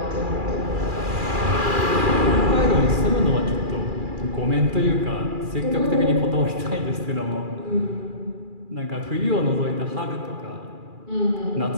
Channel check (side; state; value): left; late; 2.4 ms